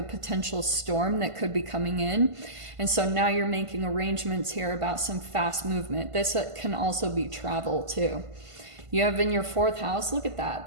potential storm that could be coming in. And so now you're making arrangements here about some fast movement. This can also be travel too. You have in your fourth house, look at that,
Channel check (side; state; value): left; late; 1.5 ms